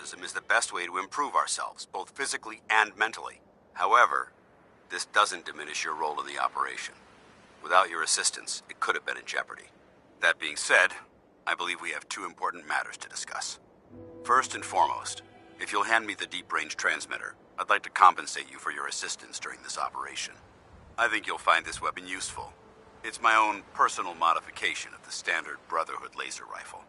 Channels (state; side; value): identical; both; correlation 1.00